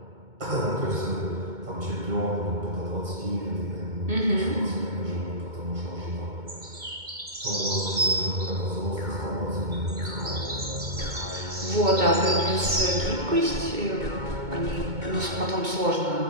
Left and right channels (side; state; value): left; late; 2.2 ms